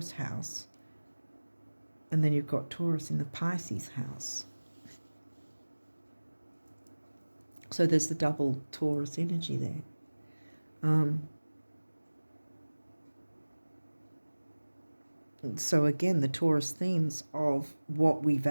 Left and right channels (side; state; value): both; inverted; correlation -1.00